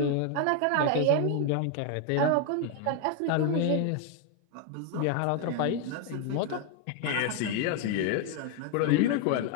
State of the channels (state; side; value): different; both; correlation 0.00